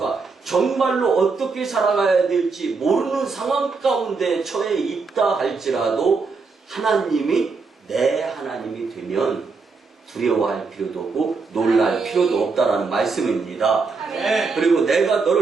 정말로 어떻게 살아가야 될지 모르는 상황 가운데 처해 있다 할지라도 하나님이 내 하나님이 되면 두려워할 필요도 없고 놀랄 필요도 없다라는 말씀입니다. 그리고 내가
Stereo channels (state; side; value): quieter; left; 4.5 dB